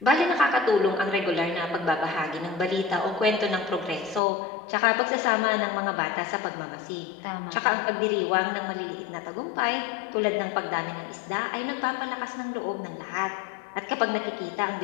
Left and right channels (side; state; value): right; drops out; at 4.2 s